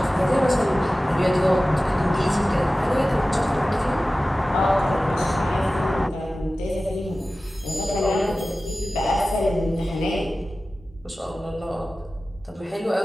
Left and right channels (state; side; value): normal; both; correlation 0.96